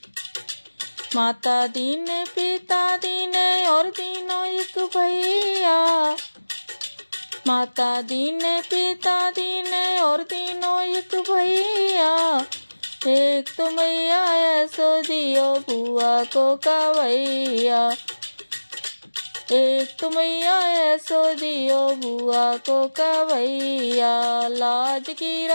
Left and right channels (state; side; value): inverted; both; correlation -1.00